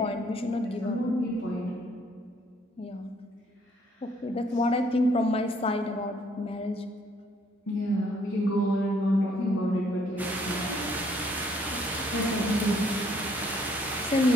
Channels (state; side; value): normal; both; correlation 0.65